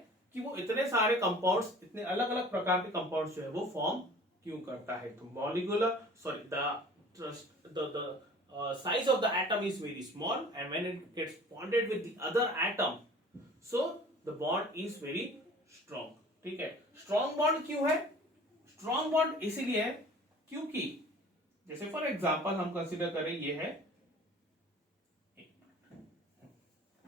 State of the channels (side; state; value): both; normal; correlation 0.46